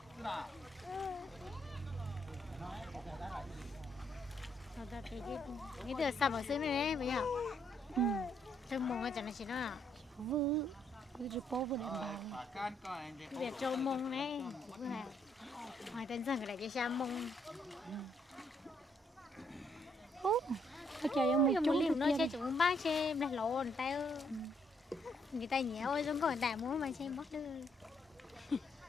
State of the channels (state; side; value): normal; both; correlation 0.72